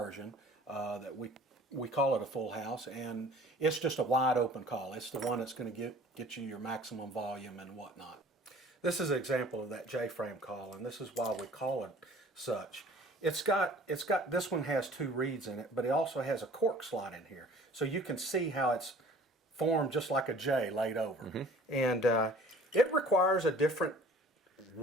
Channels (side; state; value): both; normal; correlation 0.49